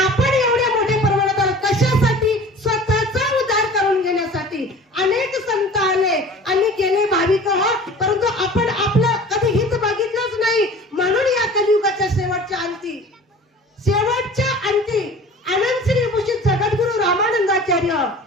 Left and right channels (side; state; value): both; normal; correlation 0.43